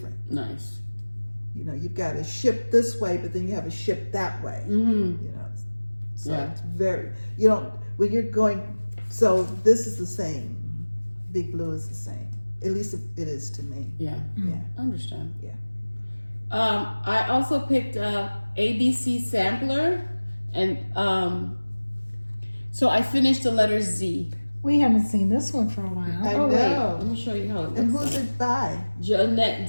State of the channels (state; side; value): inverted; both; correlation -1.00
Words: Nice. You've got to ship this way, but then you have a ship that way. So it's very, when you're going, so this is the same. Big Blue is the same. At least it is to me. Yeah. Yeah. I understand. Yeah. I also picked a ABC sampler, and so I finished the letter Z. We haven't seen this one for a while. I Wait, know. let me show you how it looks. And who's it by? Jeanette